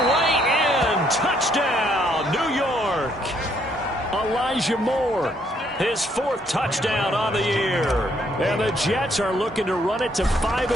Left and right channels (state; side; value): normal; both; correlation 0.70